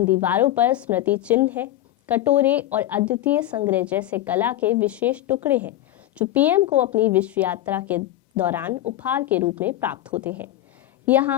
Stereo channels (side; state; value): right; quieter; 13.8 dB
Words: दीवारों पर स्मृति चिन्ह है, कटोरे और अद्वितीय संग्रह जैसे कला के विशेष टुकड़े हैं जो पीएम को अपनी विश्व यात्रा के दौरान उपहार के रूप में प्राप्त होते हैं।